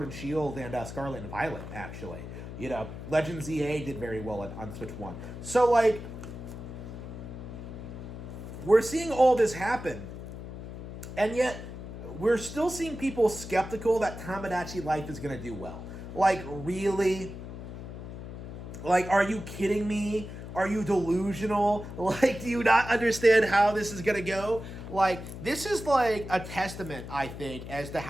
and Shield and Scarlet and Violet, actually. Legends EA did very well on Switch 1. So, like, we're seeing all this happen, and yet we're still seeing people skeptical that Tomodachi Life is going to do well. Like, really? Like, are you kidding me? Are you delusional? Like, do you not understand how this is gonna go? Like, this is like a testament, I think, as to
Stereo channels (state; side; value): noise; left; hum, 10 dB below the sound